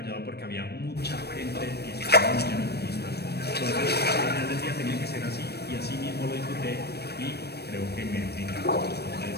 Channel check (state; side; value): late; right; 0.47 ms